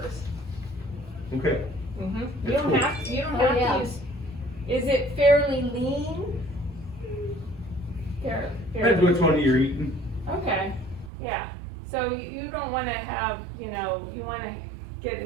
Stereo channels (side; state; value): left; drops out; at 11.1 s